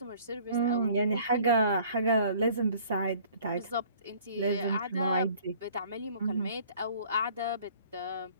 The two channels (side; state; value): both; inverted; correlation -0.53